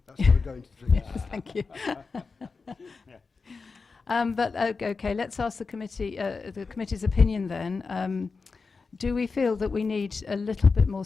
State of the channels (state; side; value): quieter; right; 4.5 dB